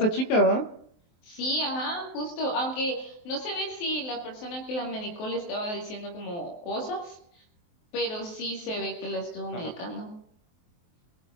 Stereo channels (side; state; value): right; late; 23 ms